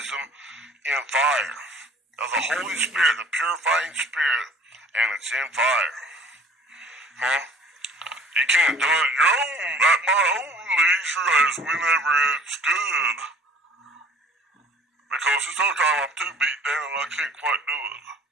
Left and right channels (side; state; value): both; normal; correlation 0.51